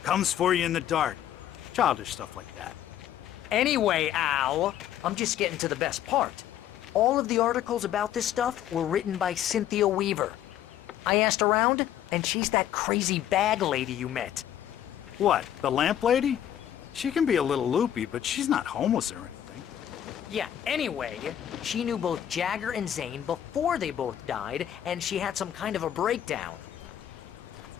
Comes for you in the dark. Childish stuff like that. Anyway, Al, I'm just getting to the best part. All of the articles about this stuff were written by Cynthia Weaver. I asked around, and she's that crazy bag lady you met. What, the lamp lady? She can be a little loopy, but she's not homeless or anything. Yeah, anyway, she knew both Jagger and Zane before they both died, and she had some kind of a breakdown.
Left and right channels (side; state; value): right; quieter; 11.0 dB